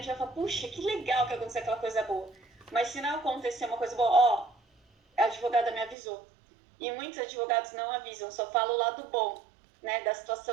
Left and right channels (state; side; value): drops out; left; at 6.0 s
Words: vai falar, puxa, que legal que aconteceu aquela coisa boa. Mas se não acontecer uma coisa boa, a advogada me avisou. E muitos advogados não avisam, só falam o lado bom, né, da